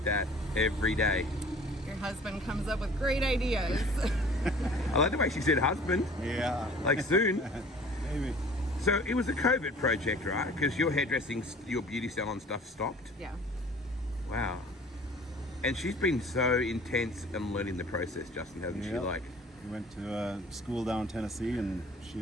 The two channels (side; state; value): both; normal; correlation 0.48